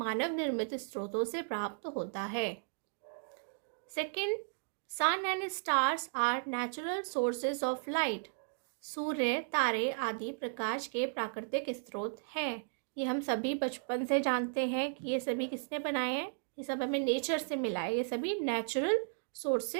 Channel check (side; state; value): left; silent; digital silence